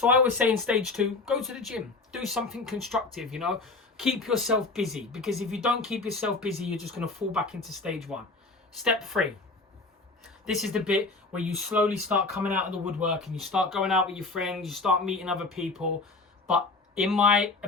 I always say in stage 2, go to the gym. Do something constructive, you know. Keep yourself busy. Because if you don't keep yourself busy, you're just going to fall back into stage 1. Step 3. This is the bit where you slowly start coming out of the woodwork and you start going out with your friends, you start meeting other people. But in my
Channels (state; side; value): quieter; right; 3.6 dB